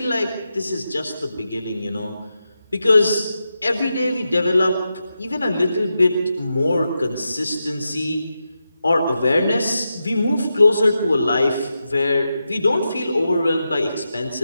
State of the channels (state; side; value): inverted; both; correlation -0.89